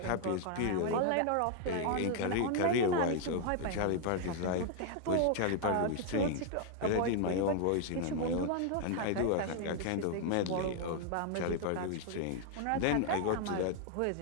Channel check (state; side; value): different; both; correlation 0.00